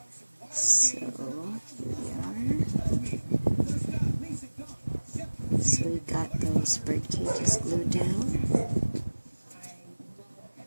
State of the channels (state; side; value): inverted; both; correlation -1.00